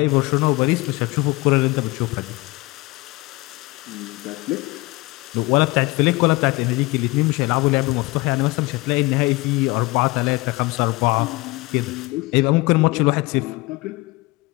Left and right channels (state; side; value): quieter; right; 22.3 dB